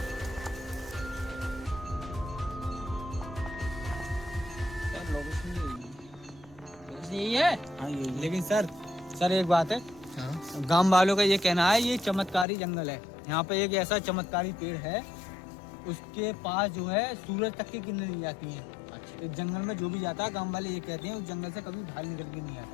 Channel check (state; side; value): drops out; right; at 12.5 s